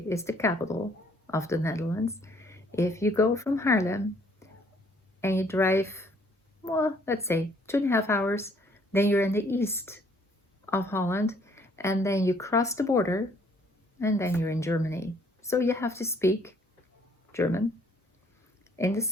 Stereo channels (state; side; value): normal; both; correlation 0.63